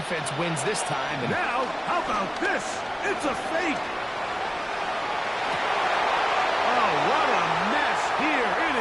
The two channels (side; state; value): both; identical; correlation 1.00